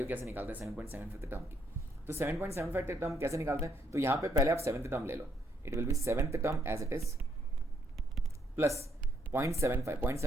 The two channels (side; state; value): both; normal; correlation 0.73